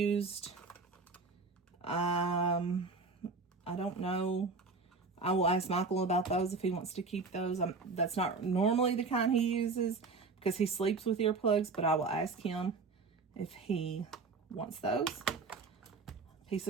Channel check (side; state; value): left; quieter; 4.1 dB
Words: I don't know. I will ask Michael about those if he wants to keep those. That's not normally the kind he uses because he sleeps with earplugs, but I will ask him if he wants those. Piece